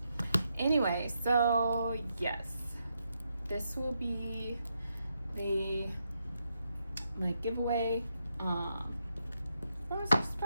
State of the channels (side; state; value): both; inverted; correlation -0.82